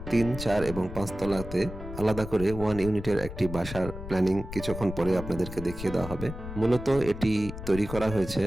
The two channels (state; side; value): noise; left; rumble, 10 dB below the sound